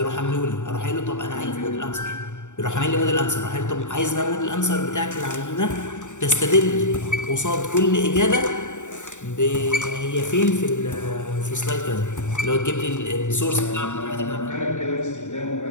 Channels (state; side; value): late; right; 0.85 ms